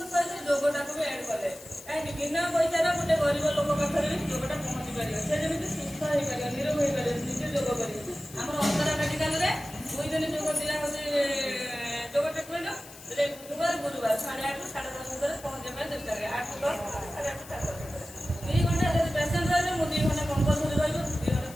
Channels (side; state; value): left; noise; hiss, 18 dB below the sound